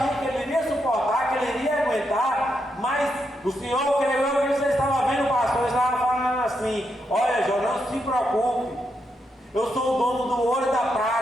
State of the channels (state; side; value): normal; both; correlation 0.82